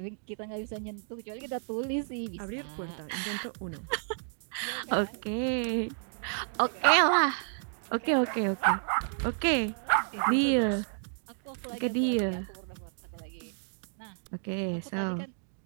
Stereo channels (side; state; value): left; silent; digital silence